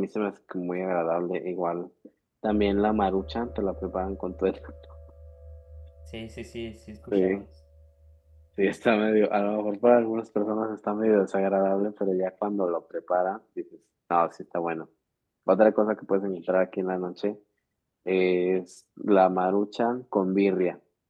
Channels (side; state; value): both; identical; correlation 1.00